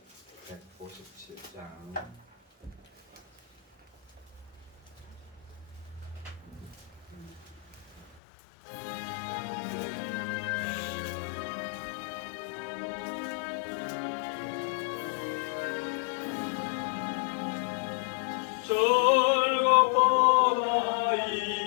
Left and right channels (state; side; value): drops out; right; at 8.2 s